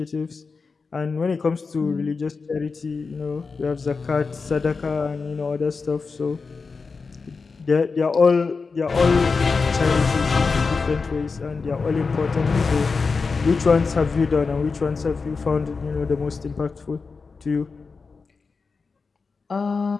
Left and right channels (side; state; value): right; quieter; 4.6 dB